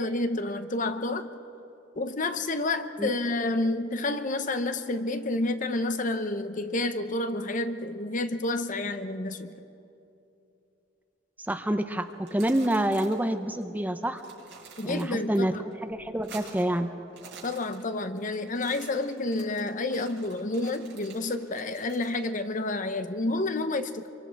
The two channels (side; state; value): both; normal; correlation 0.50